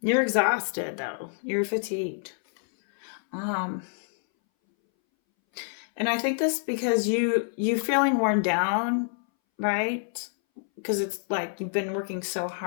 you're exhausted though. You're fatigued. Um, and I think this because you feeling worn down, right? Because it's like you've been working so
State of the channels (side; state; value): right; silent; 60 dB below the other